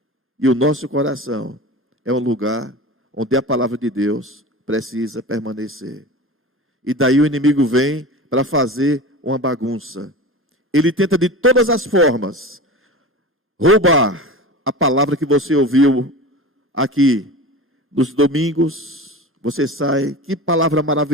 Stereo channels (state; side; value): normal; both; correlation 0.32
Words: E o nosso coração é um lugar onde a palavra de Deus precisa permanecer. E daí o inimigo vem para fazer uma bagunça. Ele tenta de todas as formas roubar a palavra que você ouviu aqui nos domingos. Você sai, que palavra